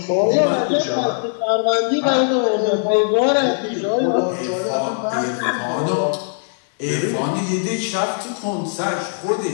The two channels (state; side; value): silent; right; 66 dB below the other